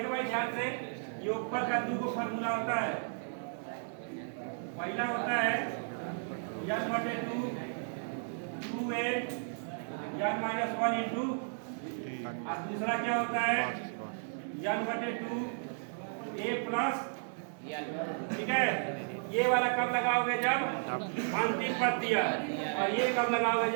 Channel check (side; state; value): left; silent; digital silence